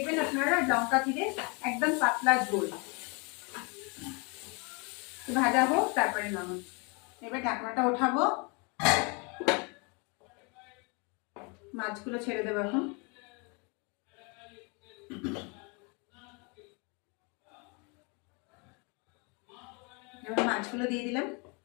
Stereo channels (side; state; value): right; quieter; 32.1 dB